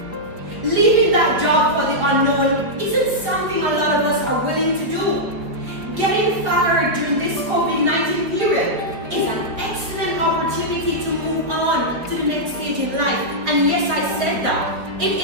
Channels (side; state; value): left; late; 4.7 ms